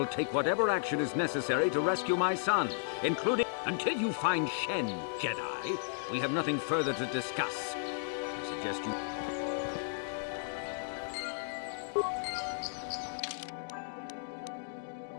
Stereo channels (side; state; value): right; silent; digital silence